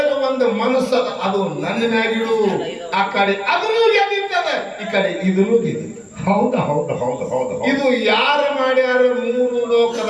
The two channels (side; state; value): both; identical; correlation 1.00